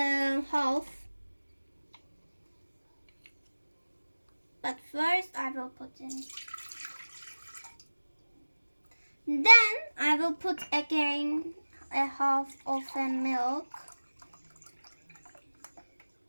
half. But first I will put in. Then I will put again a half of a milk.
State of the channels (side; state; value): both; inverted; correlation -1.00